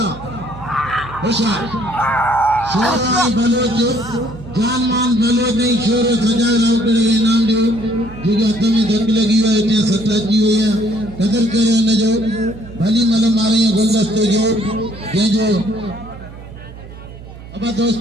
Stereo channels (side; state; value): right; noise; hum, 16 dB below the sound